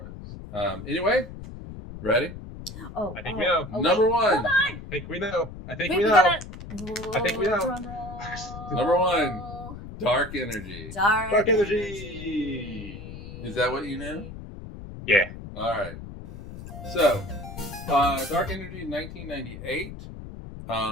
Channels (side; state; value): left; noise; rumble, 12 dB below the sound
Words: Anyway, ready? I think we know. Number one. Hold on. I think we know. I think we know. Number one. Dark energy. Dark energy. Is that what you knew? Yeah. All right. So, dark energy, 1998.